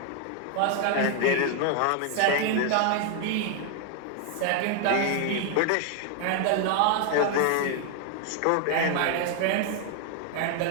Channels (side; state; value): both; different; correlation 0.00